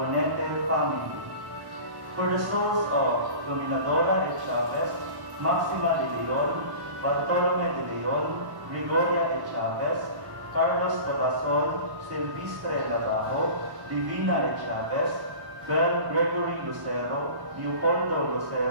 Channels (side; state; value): left; late; 1.1 ms